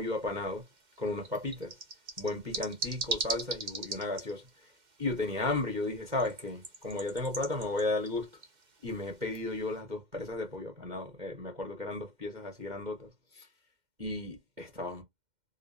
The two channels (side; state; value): left; late; 2.1 ms